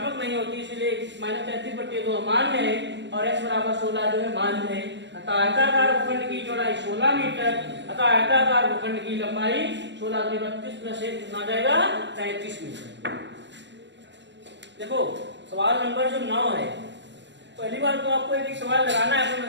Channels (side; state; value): left; late; 0.52 ms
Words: नहीं होती, इसलिए -33/2 मान्य है और x = 16 जो है मान्य है। अतः आयताकार भूखंड की चौड़ाई 16 मीटर, अतः आयताकार भूखंड की लंबाई 16 × 32 + 1 कितना जाएगा 33 मीटर। देखो सवाल नंबर जो 9 है, पहली बार तो आपको एक सवाल लगाना है तो